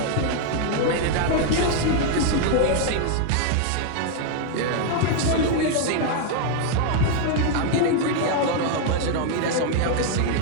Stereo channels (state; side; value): different; both; correlation 0.00